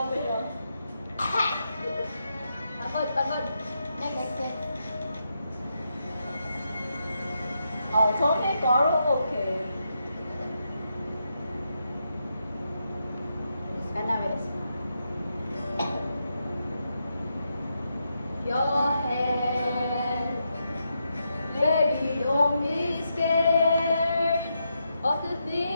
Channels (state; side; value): inverted; both; correlation -0.83